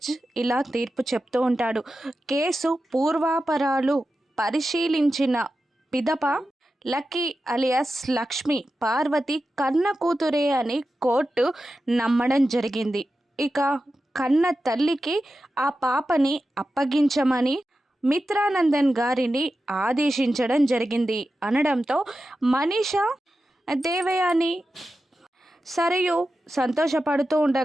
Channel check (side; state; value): both; normal; correlation 0.92